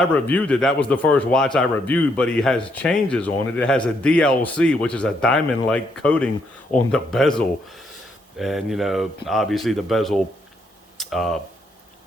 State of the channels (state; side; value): normal; both; correlation 0.74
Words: reviewed it. That was the first watch I reviewed, but he has changes on it. It has a DLC, which is a diamond-like coating on the bezel. And, obviously the bezel